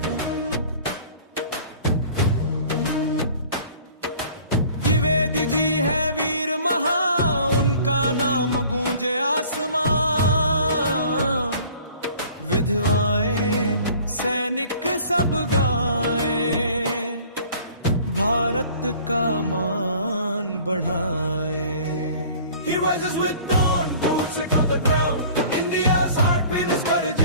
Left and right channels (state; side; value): inverted; both; correlation -0.49